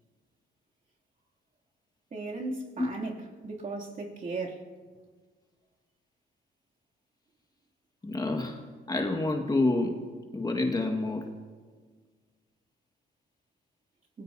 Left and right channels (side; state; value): both; normal; correlation 0.79